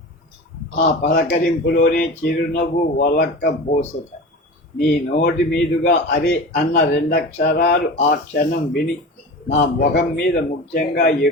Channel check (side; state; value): both; normal; correlation 0.32